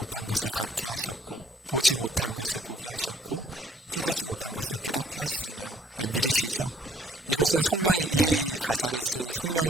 것을 갖게 하셨고 보지 못한 것을 보게 하셨고 깨닫지 못한 것을 깨닫게 하시잖아요. 믿으시죠? 이것은 이 가사를 쓴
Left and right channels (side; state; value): both; normal; correlation 0.63